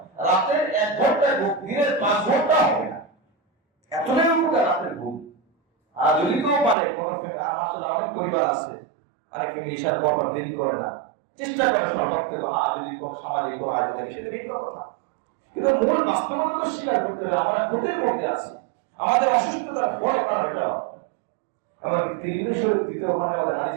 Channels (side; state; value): left; drops out; at 6.8 s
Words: রাতের 1 ঘন্টা ঘুম দিনের 5 ঘন্টা হবে না, এতটাই উপকার রাতের ঘুম। আর যদি কেউ পারে, মাসাল্লাহ অনেক পরিবার আছে, অনেকে মিশার পর দেরি করে না, চেষ্টা করে সর্বত্র থেকে, যদি কোন সামাজিক কোনো আয়োজন থাকে সেটা ভিন্ন কথা, কিন্তু মূল বাস্তবতা তো স্বীকার করতে হবে। আমরা ক্ষতির মধ্যে আছি, আমাদের অসুস্থতার বড় কারণ এটা। আমাদের তিরমিজি শরীফ 2য় খণ্ডে আমাদের হাদিস